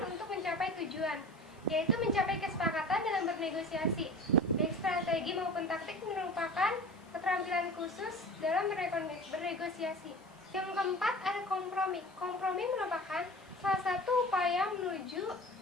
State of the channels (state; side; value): noise; left; hiss, 30 dB below the sound